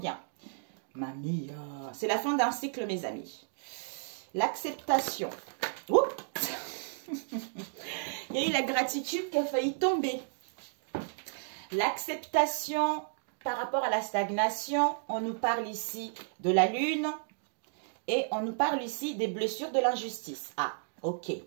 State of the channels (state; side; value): silent; left; digital silence